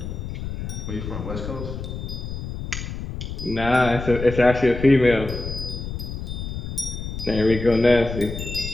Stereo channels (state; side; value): noise; left; rumble, 6 dB below the sound